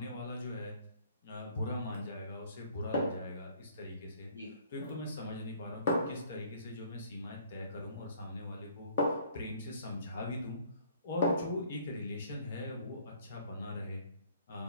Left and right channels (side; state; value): both; inverted; correlation -0.58